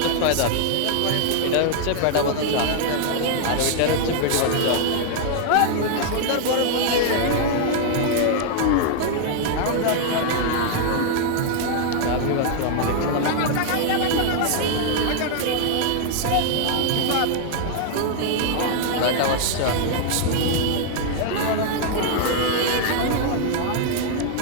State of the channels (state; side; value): different; both; correlation -0.01